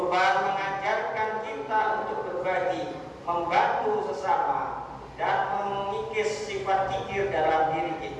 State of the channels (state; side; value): identical; both; correlation 1.00